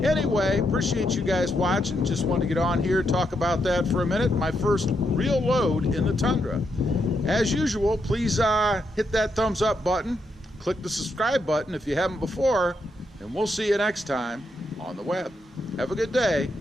Anyway, appreciate you guys watching. Just want to get on here, talk about that for a minute. My first real load in the Tundra. As usual, please hit that thumbs up button, click the subscribe button if you haven't before, and we'll see you next time on the web. Have a good day.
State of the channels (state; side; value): normal; both; correlation 0.80